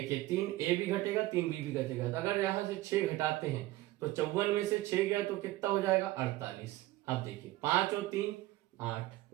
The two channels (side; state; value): left; quieter; 17.3 dB